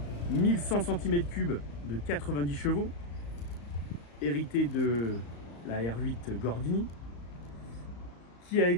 1100 cm3 de 90 chevaux, hérité de la R8 Gordini, qui a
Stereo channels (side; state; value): right; late; 35 ms